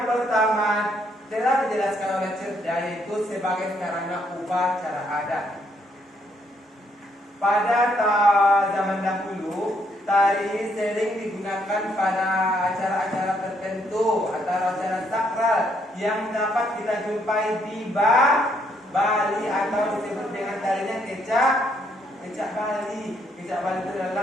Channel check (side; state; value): both; normal; correlation 0.72